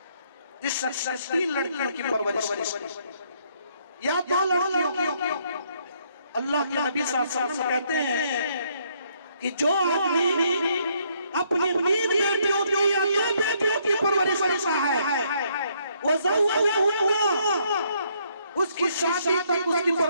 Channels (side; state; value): both; inverted; correlation -0.70